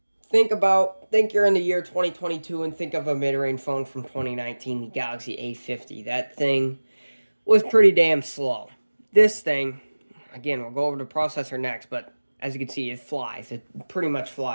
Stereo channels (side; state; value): both; inverted; correlation -1.00